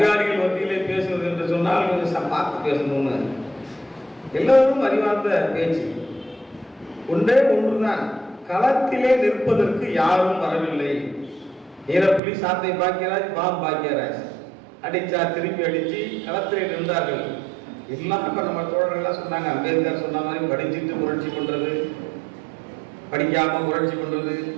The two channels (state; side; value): drops out; left; at 12.2 s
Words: மத்தியிலே பேசுவது என்று சொன்னால் கொஞ்சம் பார்த்து பேசணும்னு. எல்லோரும் அறிவார்ந்த பேச்சு ஒன்றே ஒன்றுதான், களத்திலே நிற்பதற்கு யாரும் வரவில்லை. ஈரப்புலி சாத்தை பாக்கியராஜ், பாம் பாக்கியராஜ் அடிச்சா திருப்பி அடிச்சு களத்திலே நின்றார்கள். எல்லாம் இப்போ நம்ம தோழர்கள்லாம் சொன்னாங்க, அம்பேத்கர் சொன்ன மாதிரி படிச்சுட்டு புரட்சி பண்றது, படிக்காம புரட்சி பண்றது,